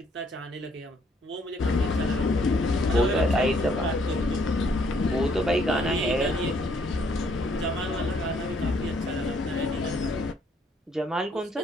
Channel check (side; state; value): both; normal; correlation 0.67